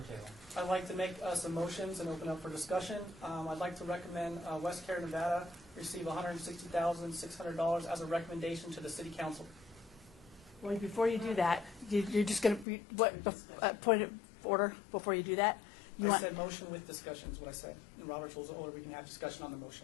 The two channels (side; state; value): right; drops out; at 12.7 s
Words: Taylor. I'd like to make some motions and open up for discussion. I'd like to recommend West Care, Nevada receive $160,600 as a recommendation to the city council. Well, before you do that, you're just going to, point of order before you do that? You I want, said motion with discussion is what I said. In Robert's Rules of Order, we can have discussion on the